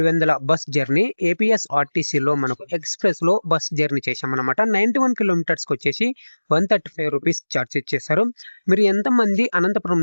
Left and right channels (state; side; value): inverted; both; correlation -1.00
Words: bus journey. ఏపీఎస్ఆర్టీసీలో మనకు ఎక్స్ప్రెస్లో బస్ జర్నీ చేసామన్నమాట. 91 కిలోమీటర్స్కి వచ్చేసి 135 రూపీస్ ఛార్జ్ చేశారు. మీరు ఎంతమంది అనంతపురం